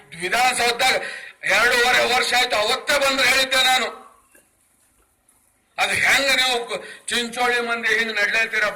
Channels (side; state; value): both; identical; correlation 1.00